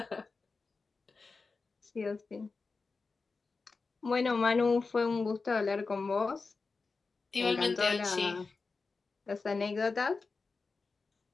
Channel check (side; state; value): right; quieter; 4.2 dB